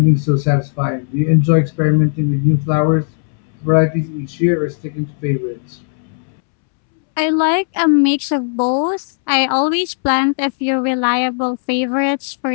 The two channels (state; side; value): silent; right; 69 dB below the other